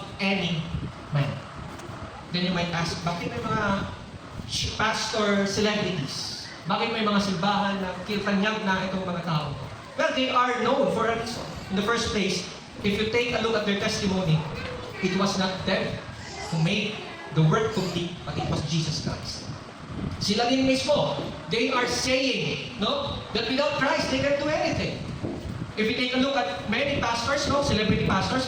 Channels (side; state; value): both; identical; correlation 1.00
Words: any man. Then you might ask, bakit may mga pastor celebrities? Bakit may mga simbahan na kiltanyag na itong mga tao? Well, they are known for a reason. In the first place, if you take a look at their testimony, it was not them who made the work complete, but it was Jesus Christ. Sila din mismo, they are saying, no, that without Christ, they can't do anything. If you take a look at many pastors, no, celebrity pastors,